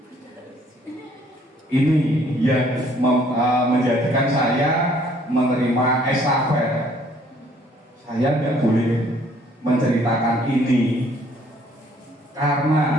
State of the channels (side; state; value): both; normal; correlation 0.61